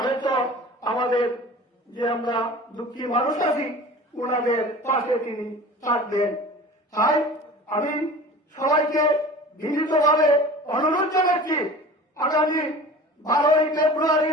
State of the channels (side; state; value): both; normal; correlation 0.39